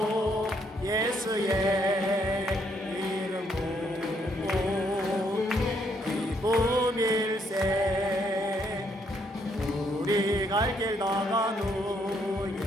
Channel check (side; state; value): both; normal; correlation 0.72